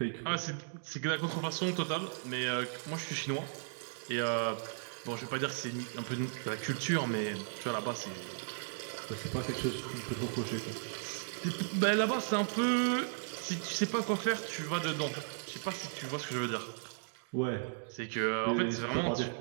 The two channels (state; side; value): silent; left; digital silence